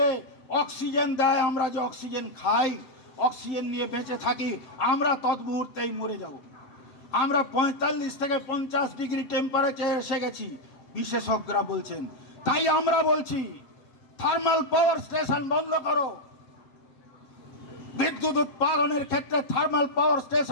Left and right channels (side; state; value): right; late; 7.7 ms